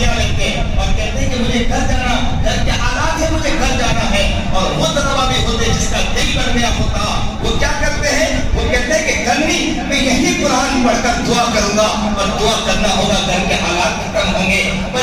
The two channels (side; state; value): both; identical; correlation 1.00